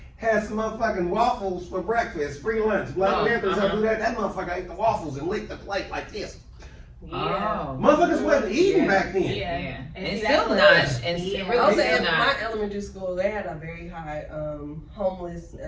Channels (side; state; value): both; identical; correlation 1.00